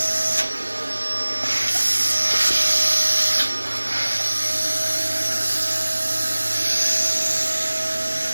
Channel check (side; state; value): both; inverted; correlation -1.00